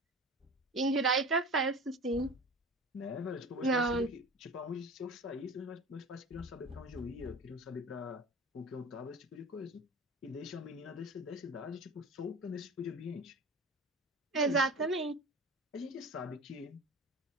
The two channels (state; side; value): normal; both; correlation 0.34